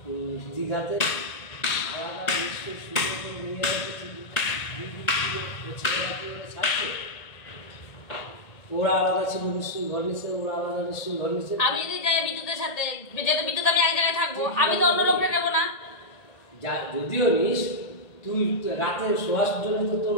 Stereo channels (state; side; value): late; right; 1.9 ms